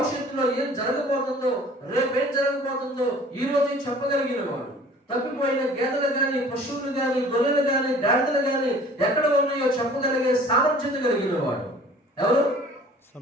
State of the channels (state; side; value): normal; both; correlation 0.49